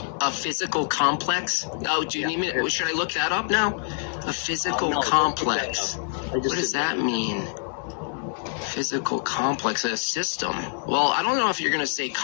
A physical complex? Oh, do you need me? Should I look that up now? A physical complex. What does that mean? Physical complex, a system. Well, I don't know if you're going to say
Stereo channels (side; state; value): right; silent; 61 dB below the other